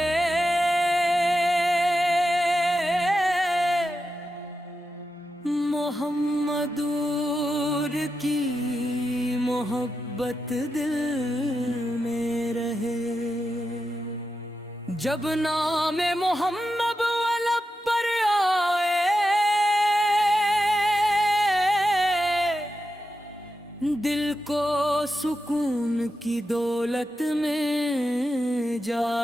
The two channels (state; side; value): normal; both; correlation 0.89